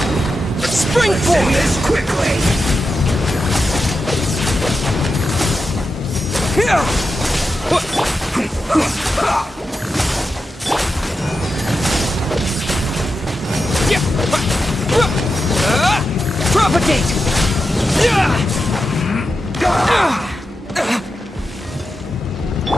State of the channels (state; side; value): normal; both; correlation 0.89